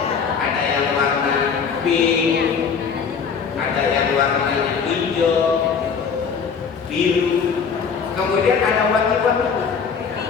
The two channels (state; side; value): quieter; right; 6.1 dB